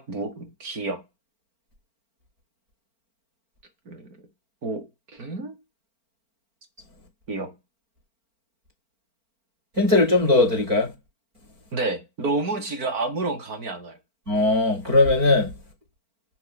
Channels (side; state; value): left; late; 4.4 ms